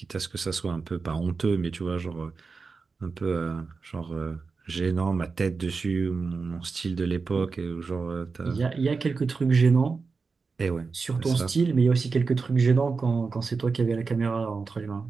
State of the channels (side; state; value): left; quieter; 4.6 dB